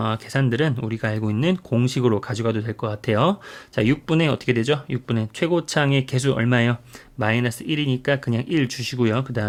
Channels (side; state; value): both; identical; correlation 1.00